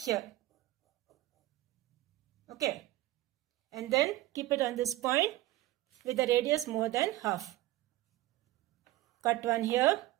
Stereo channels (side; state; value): left; quieter; 16.3 dB